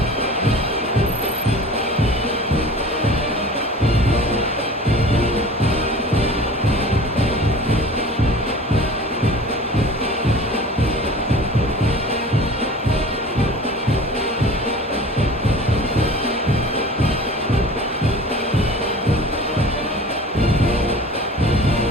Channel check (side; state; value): both; normal; correlation 0.40